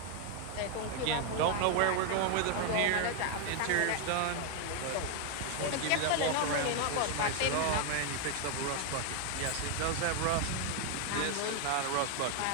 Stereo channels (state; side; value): different; both; correlation 0.00